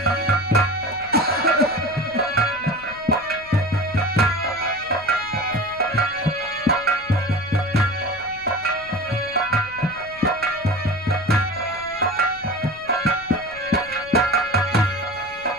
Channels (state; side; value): noise; left; rumble, 22 dB below the sound